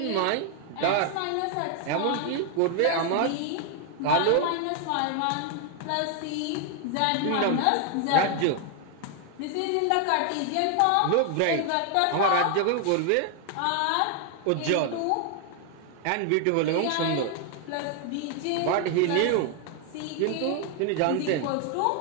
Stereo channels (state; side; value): different; both; correlation 0.00